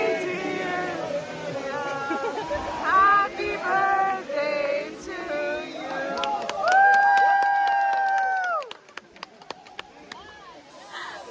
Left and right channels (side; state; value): both; identical; correlation 1.00